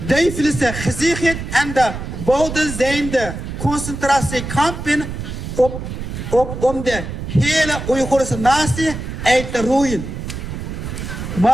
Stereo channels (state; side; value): noise; right; rumble, 7 dB below the sound